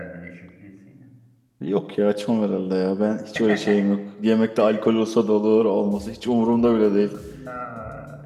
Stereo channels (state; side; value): identical; both; correlation 1.00